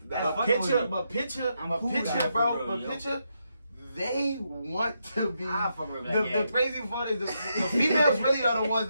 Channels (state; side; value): inverted; both; correlation -0.81